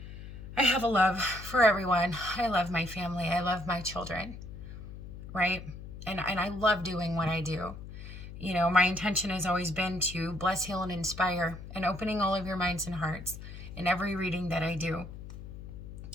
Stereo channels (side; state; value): left; noise; hum, 12 dB below the sound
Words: have a love for everyone. I love my family. I love my children, right? And I love doing what I do. You know, my intention has always been to bless, heal, and inspire, and opening all of your minds and hearts in every reading that I do,